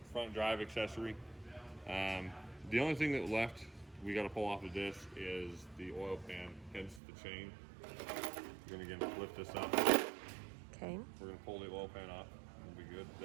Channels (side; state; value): left; drops out; at 7.0 s